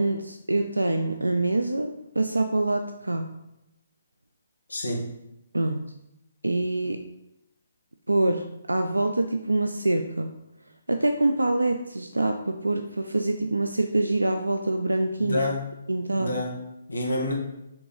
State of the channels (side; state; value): both; inverted; correlation -0.91